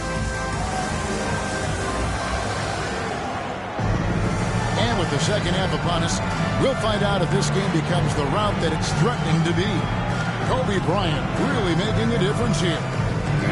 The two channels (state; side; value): identical; both; correlation 1.00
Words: And with the second half upon us, we'll find out if this game becomes the route that it's threatening to be. Kobe Bryant really making a difference here.